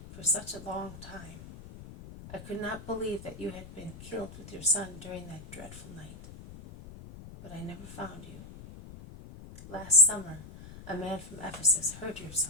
for such a long time. I could not believe that you had been killed with your son during that dreadful night. But I never found you. Last summer, a man from Ephesus heard your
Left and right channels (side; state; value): left; noise; rumble, 15 dB below the sound